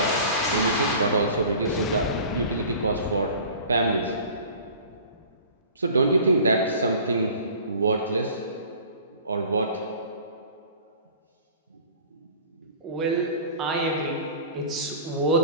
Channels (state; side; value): inverted; both; correlation -0.43